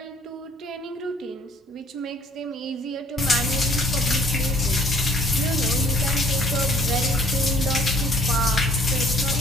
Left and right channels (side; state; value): both; normal; correlation 0.57